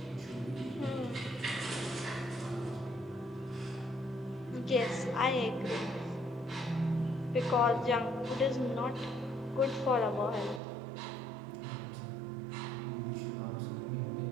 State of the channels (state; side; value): drops out; left; at 10.6 s